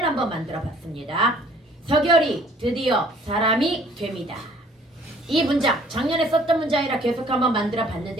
한번 만들어 봤습니다. 서결이 드디어 사람이 됩니다. 이 문장 작년에 썼던 문장이라 계속 한번 만들어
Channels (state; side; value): normal; both; correlation 0.56